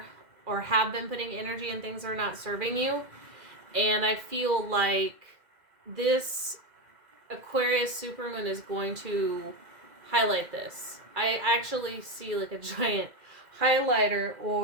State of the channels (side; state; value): left; late; 2.1 ms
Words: have been putting energy in things that are not serving you. And I feel like this Aquarius supermoon is going to highlight this. I actually see like a giant highlighter